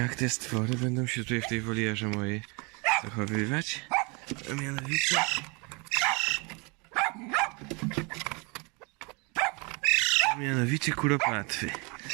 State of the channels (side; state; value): left; quieter; 29.9 dB